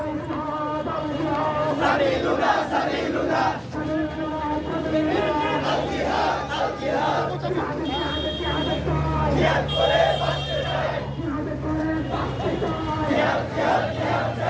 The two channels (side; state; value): both; identical; correlation 1.00